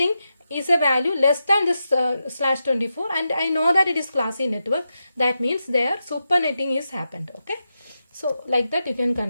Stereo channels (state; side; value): inverted; both; correlation -0.88